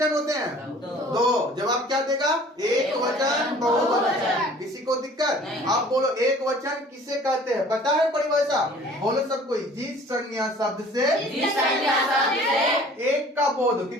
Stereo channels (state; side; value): normal; both; correlation 0.50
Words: होते हैं? दो। जवाब क्या देगा? एक वचन, बहुवचन। किसी को दिक्कत? आप बोलो, एक वचन किसे कहते हैं? पता है परिभाषा? बोलो सब कोई। जिस संज्ञा शब्द से एक का बोध,